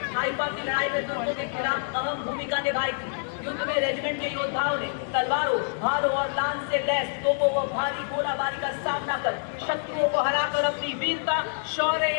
हाइफा की लड़ाई में तुर्कों के खिलाफ अहम भूमिका निभाई थी। युद्ध में रेजिमेंट के योद्धाओं ने तलवारों, भालों और लांस से लैस तोपों व भारी गोलाबारी का सामना कर शत्रुओं को हराकर अपनी वीरता, शौर्य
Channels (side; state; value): right; silent; digital silence